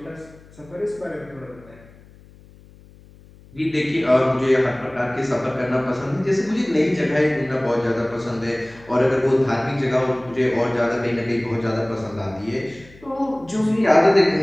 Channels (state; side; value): noise; left; hum, 24 dB below the sound